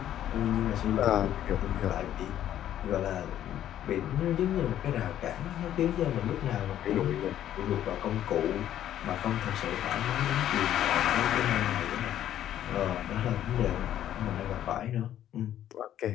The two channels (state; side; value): quieter; right; 11.5 dB